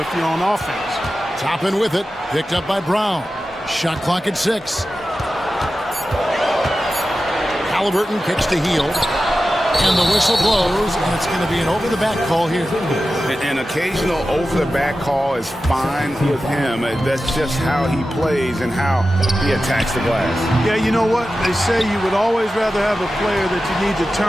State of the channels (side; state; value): both; normal; correlation 0.93